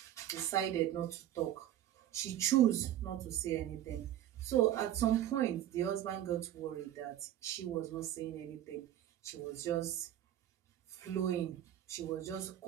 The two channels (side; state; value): left; quieter; 12.1 dB